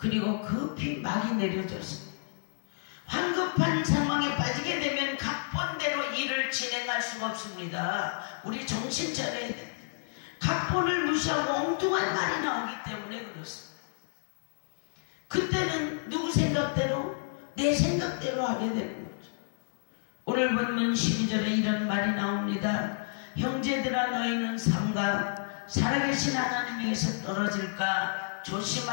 급히 막이 내려졌습니다. 황급한 상황에 빠지게 되면 각본대로 일을 진행할 수가 없습니다. 우리 정신 차려야 됩니다. 각본을 무시하고 엉뚱한 말이 나오기 때문에 그렇습니다. 그때는 누구 생각대로, 내 생각대로 하게 되는 거죠. 오늘 본문 12절에 이런 말이 나옵니다. 형제들아, 너희는 삼가 살아계신 하나님에게서 떨어질까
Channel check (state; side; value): silent; right; 58 dB below the other